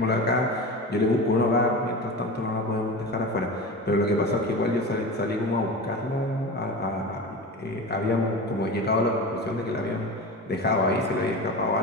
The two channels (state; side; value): normal; both; correlation 0.29